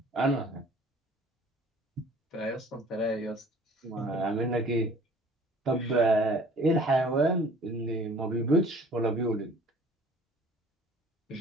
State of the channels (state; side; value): normal; both; correlation 0.51